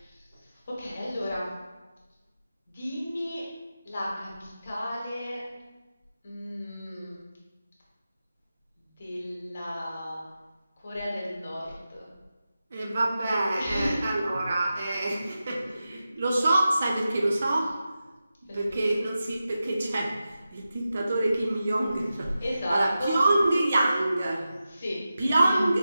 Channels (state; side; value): inverted; both; correlation -0.92